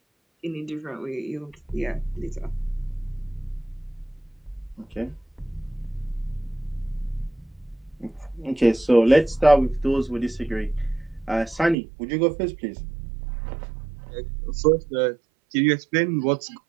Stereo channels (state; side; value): drops out; left; at 11.8 s